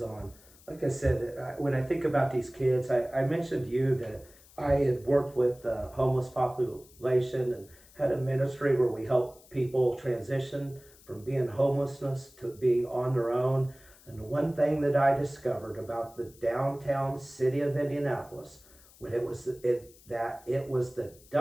Like I said, when I think about these kids, I mentioned to you that I had worked with the homeless population and had a ministry where we help people transition from being homelessness to being on their own. And the one thing that I discovered about the downtown city of Indianapolis, when it was the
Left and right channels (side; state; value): left; noise; hiss, 25 dB below the sound